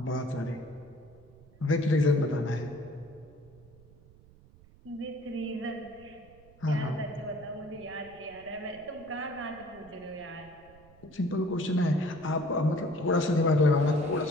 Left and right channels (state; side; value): noise; right; rumble, 24 dB below the sound